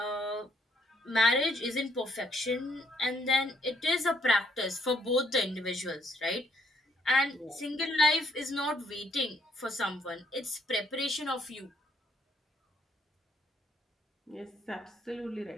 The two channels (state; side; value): normal; both; correlation 0.69